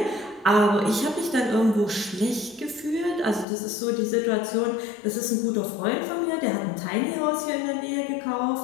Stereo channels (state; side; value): drops out; right; at 3.5 s